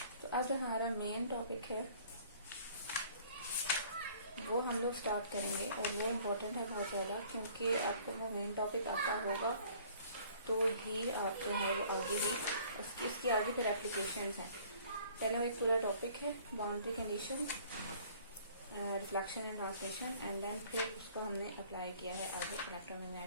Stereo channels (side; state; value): both; inverted; correlation -0.54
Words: तो अब जो हमारा मेन टॉपिक है वो हम लोग स्टार्ट करेंगे और वो इम्पोर्टेंट है बहुत ज़्यादा, क्योंकि आपको वो मेन टॉपिक आता होगा तो ही आप जो है वो आगे भी इसकी आगे फिर एप्लीकेशंस हैं. पहले वो एक पूरा टॉपिक है boundary condition, reflection and translation, and then फिर उसको हमने अप्लाई किया है आगे